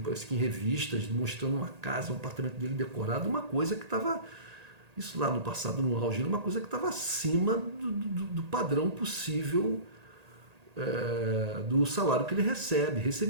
parece que em revistas, mostrando uma casa, um apartamento dele decorado, uma coisa que estava, isso lá no passado, no auge, uma coisa que estava acima do padrão possível do salário que ele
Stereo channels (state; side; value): late; left; 1.8 ms